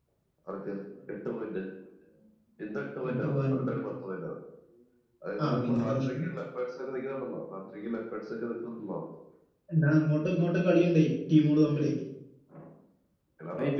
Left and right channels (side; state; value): both; identical; correlation 1.00